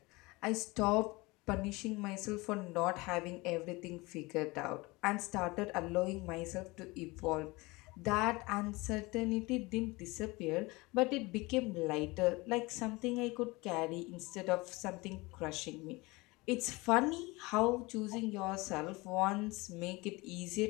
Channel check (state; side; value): quieter; right; 23.4 dB